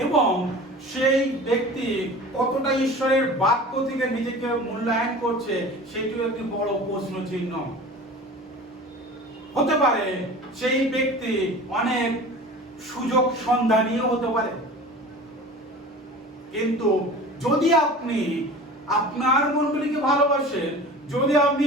এবং সেই ব্যক্তি কতটা ঈশ্বরের বাক্য থেকে নিজেকে মূল্যায়ন করছে সেটিও একটি বড় প্রশ্ন চিহ্ন। হতে পারে সেই ব্যক্তি অনেক সুযোগ সন্ধানীয় হতে পারে, কিন্তু যদি আপনি আপনার মণ্ডলীকে ভালোবাসেন, যদি আপনি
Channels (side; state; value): both; normal; correlation 0.38